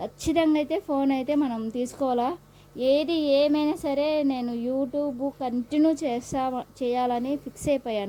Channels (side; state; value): both; identical; correlation 1.00